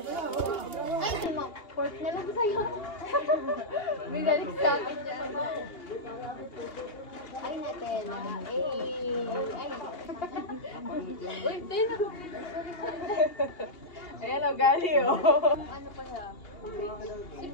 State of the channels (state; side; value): late; right; 2.7 ms